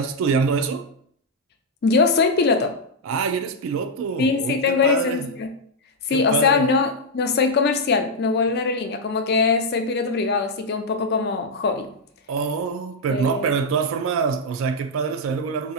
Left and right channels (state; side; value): normal; both; correlation -0.02